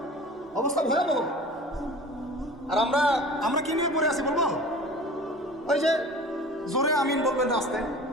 অবস্থা ভয়াবহ। আর আমরা কি নিয়ে পড়ে আছি বলবো? ওই যে জোরে আমিন বলবেন রাস্তে,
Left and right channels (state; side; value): normal; both; correlation 0.40